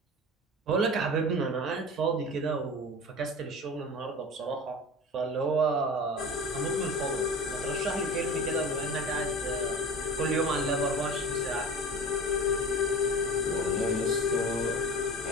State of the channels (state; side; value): normal; both; correlation 0.34